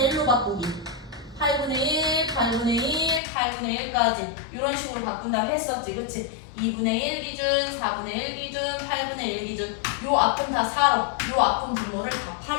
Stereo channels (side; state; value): right; drops out; at 3.2 s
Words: 1로 바꾸기. 8분의 1, 8분의 1, 8분의 1까지 이런 식으로 바꾼다고 했었지. 그치? 2분의 1 기준, 4분의 1 기준, 8분의 1 기준. 요 앞은 다 4로, 요 앞은 분모를 다